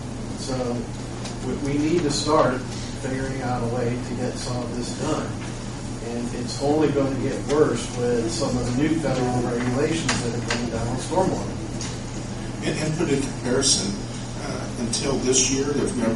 So we need to start figuring out a way to get some of this done. And it's only going to get worse with some of the new federal regulations that are coming down on stormwater. And put in comparison, until this year, there's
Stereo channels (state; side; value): identical; both; correlation 1.00